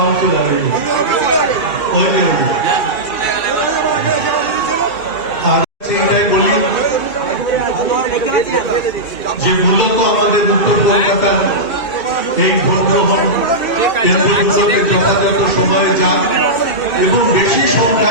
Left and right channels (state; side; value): late; right; 2.3 ms